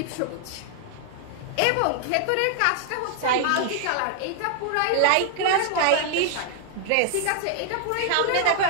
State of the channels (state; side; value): different; both; correlation 0.00